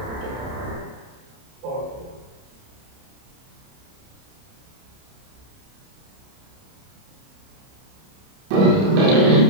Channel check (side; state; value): left; late; 30 ms